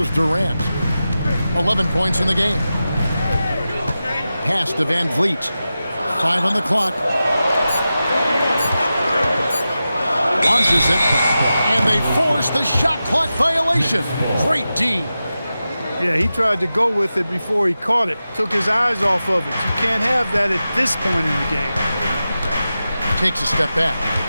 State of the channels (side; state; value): both; inverted; correlation -0.93